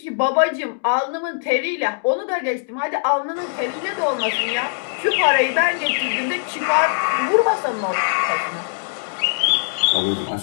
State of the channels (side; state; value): right; silent; digital silence